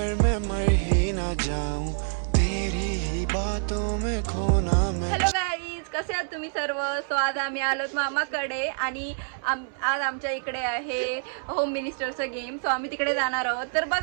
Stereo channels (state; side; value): silent; left; 60 dB below the other